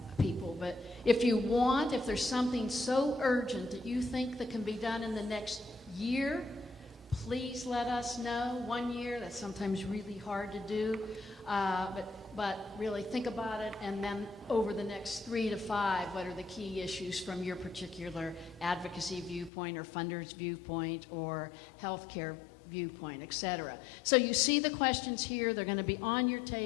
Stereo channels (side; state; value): right; drops out; at 19.5 s